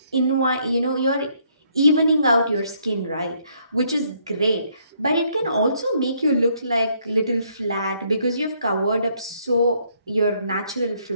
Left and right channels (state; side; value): inverted; both; correlation -0.69